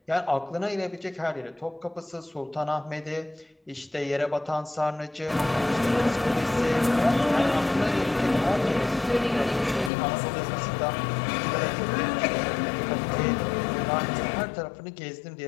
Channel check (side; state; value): right; drops out; at 9.9 s